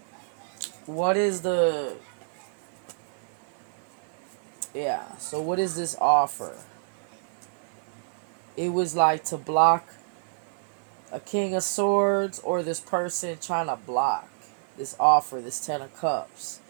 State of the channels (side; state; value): left; silent; 59 dB below the other